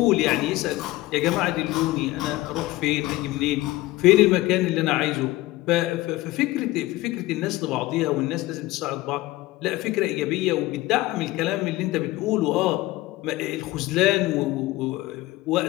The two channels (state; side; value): quieter; right; 18.6 dB